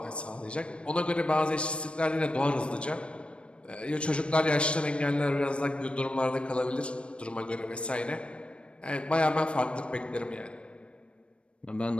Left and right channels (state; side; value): late; right; 0.059 ms